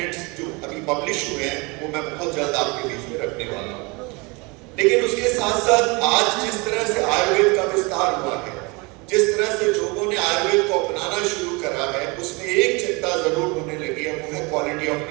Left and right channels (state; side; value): quieter; left; 27.4 dB